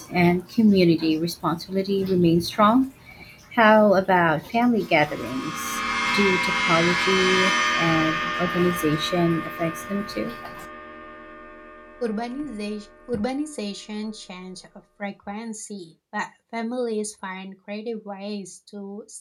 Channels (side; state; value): both; identical; correlation 1.00